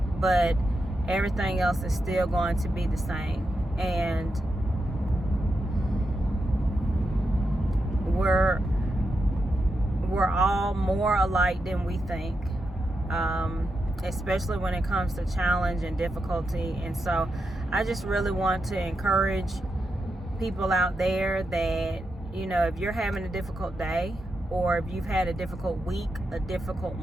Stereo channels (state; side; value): normal; both; correlation 0.86